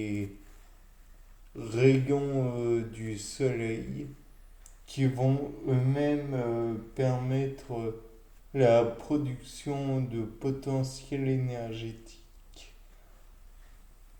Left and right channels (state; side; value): identical; both; correlation 1.00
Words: rayons du soleil qui vont eux-mêmes permettre la production de potentiel énergétique,